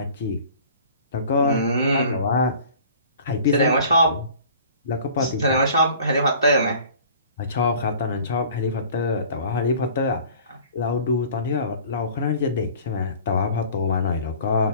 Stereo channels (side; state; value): both; inverted; correlation -0.47